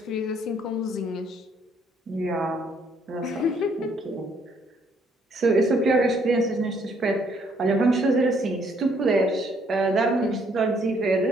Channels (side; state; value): both; normal; correlation 0.67